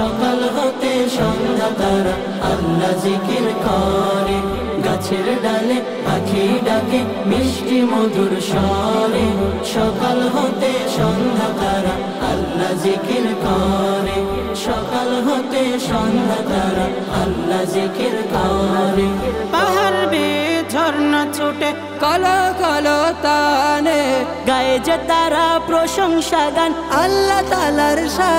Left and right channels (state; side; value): identical; both; correlation 1.00